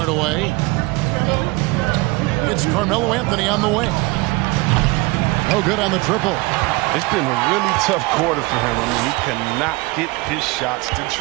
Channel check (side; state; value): left; quieter; 24.0 dB